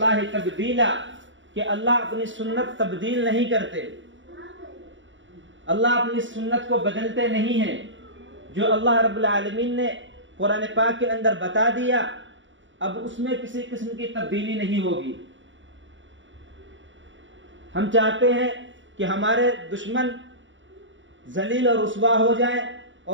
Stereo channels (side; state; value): left; late; 0.55 ms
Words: تبدیلا، کہ اللہ اپنی سنت تبدیل نہیں کرتے، اللہ اپنی سنت کو بدلتے نہیں ہیں۔ جو اللہ رب العالمین نے قرآن پاک کے اندر بتا دیا اب اس میں کسی قسم کی تبدیلی نہیں ہوگی۔ ہم چاہتے ہیں کہ ہمارے دشمن ذلیل اور رسوا ہو جائیں